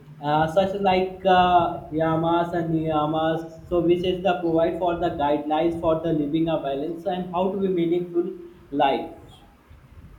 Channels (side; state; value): both; identical; correlation 1.00